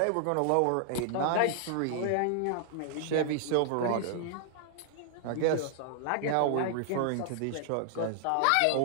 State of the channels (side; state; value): both; different; correlation 0.00